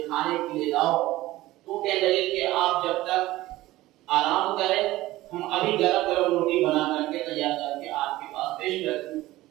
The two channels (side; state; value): left; quieter; 17.1 dB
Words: کھانے کے لیے لاؤ۔ تو کہنے لگے کہ آپ جب تک آرام کریں ہم ابھی گرم گرم روٹی بنا کر کے تیار کر کے آپ کے پاس پیش کرتے ہیں۔